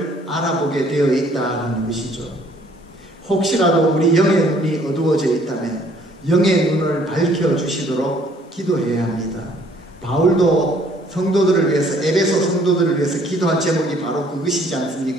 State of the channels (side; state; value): both; normal; correlation 0.60